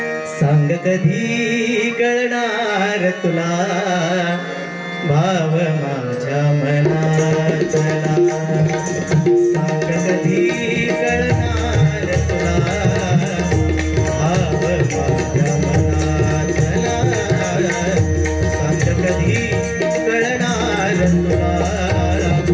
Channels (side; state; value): both; identical; correlation 1.00